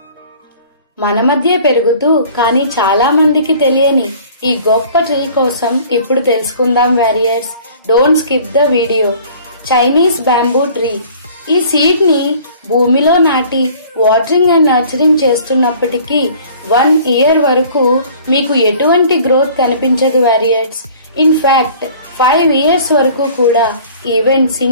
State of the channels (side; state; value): both; inverted; correlation -0.50